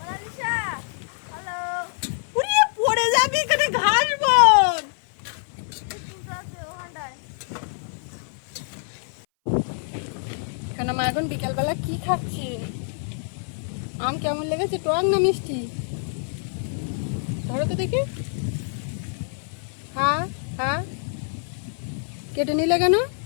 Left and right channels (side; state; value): right; silent; 59 dB below the other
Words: hello. উড়ে পড়ে যাবি, এখানে ঘাস বন। কেন মা এখন বিকালবেলা কি খাচ্ছি? আম কেমন লেগেছে, টক না মিষ্টি? ধরো তো দেখি। হ্যাঁ হ্যাঁ, কেটে নিলে কেন?